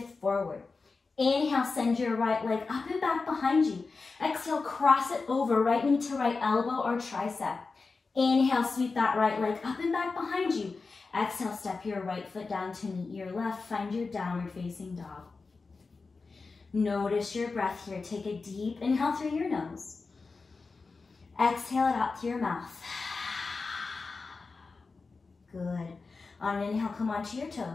forward. Inhale, send your right leg up and back behind you. Exhale, cross it over, right knee to right elbow or tricep. Inhale, sweep that right leg up and back behind you. Exhale, step your right foot down to meet your left. Find your downward facing dog. Notice your breath here. Take a deep inhale through your nose. Exhale it out through your mouth. Good. On an inhale, come onto your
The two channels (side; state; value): right; quieter; 4.2 dB